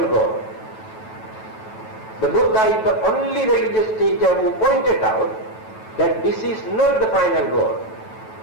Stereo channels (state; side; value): late; right; 9.2 ms